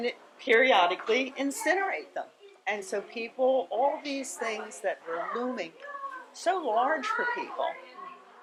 periodically incinerate them. And so people, all these things that were looming so large for people,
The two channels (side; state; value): both; identical; correlation 1.00